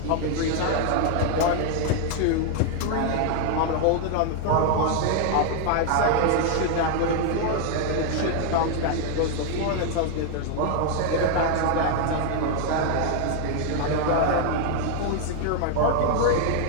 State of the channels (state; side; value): different; both; correlation 0.00